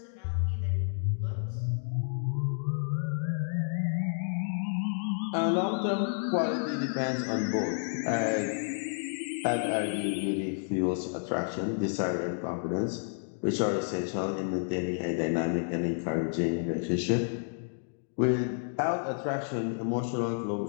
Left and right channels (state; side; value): silent; right; digital silence